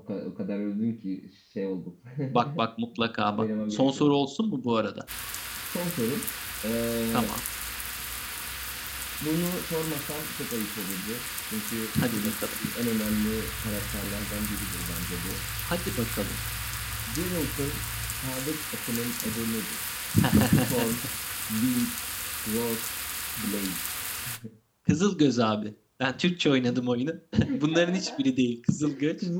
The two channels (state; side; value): identical; both; correlation 1.00